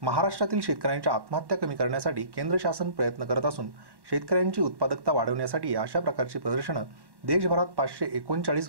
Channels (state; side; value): late; left; 1.1 ms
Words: महाराष्ट्रातील शेतकऱ्यांच्या आत्महत्या कमी करण्यासाठी केंद्र शासन प्रयत्न करत असून शेतकऱ्यांची उत्पादकता वाढवण्यासाठी अशा प्रकारची प्रदर्शनं देशभरात 539